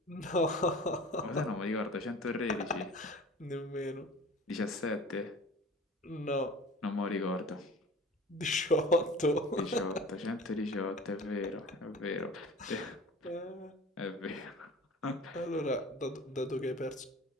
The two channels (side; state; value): both; normal; correlation 0.41